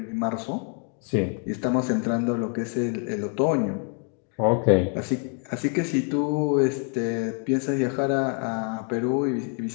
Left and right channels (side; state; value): right; quieter; 39.4 dB